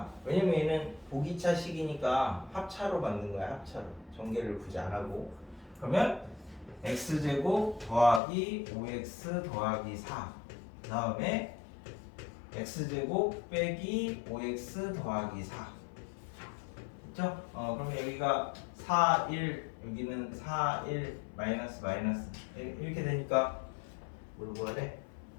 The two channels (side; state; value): right; drops out; at 8.2 s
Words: 왜냐면 얘는 보기차식이니까 합차로 만든 거야. 합차로. 전개를 굳이 안 하고. 그러면 x제곱 더하기 5x 더하기 4. 그 다음에 x제곱 빼기 5x 더하기 4. 그렇죠? 그러면 여기가 4, 1, 여기는 4, 1, 마이너스 이렇게 되니까 뭘 구해야 돼?